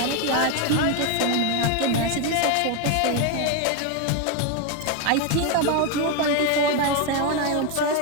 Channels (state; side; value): different; both; correlation 0.02